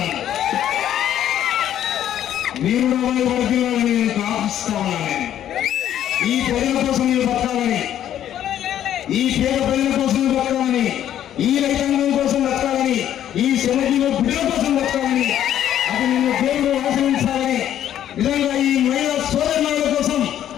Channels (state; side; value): quieter; right; 11.0 dB